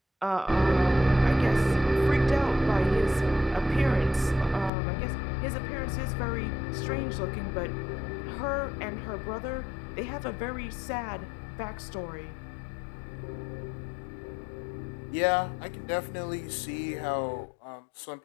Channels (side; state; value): right; drops out; at 4.7 s